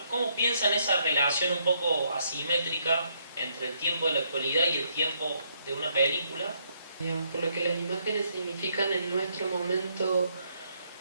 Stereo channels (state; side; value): inverted; both; correlation -0.73